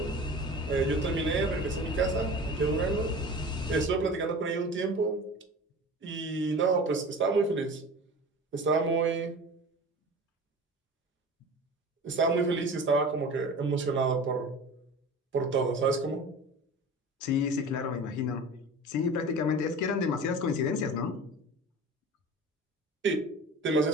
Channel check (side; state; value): both; normal; correlation 0.37